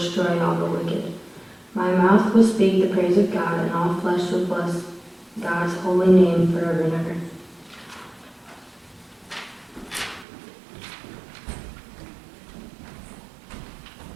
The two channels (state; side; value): drops out; left; at 10.2 s